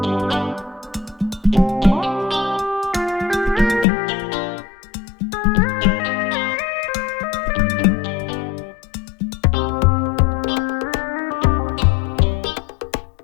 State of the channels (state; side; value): drops out; right; at 3.9 s